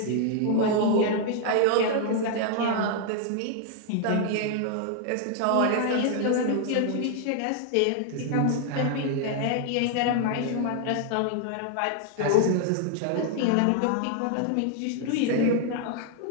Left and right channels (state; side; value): different; both; correlation 0.00